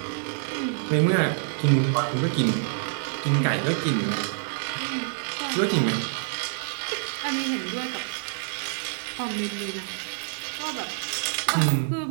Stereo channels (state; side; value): silent; left; 60 dB below the other